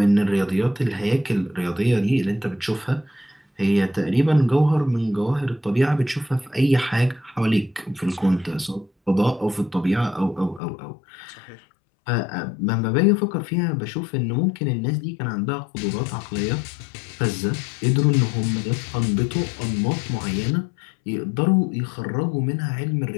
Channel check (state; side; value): drops out; right; at 10.6 s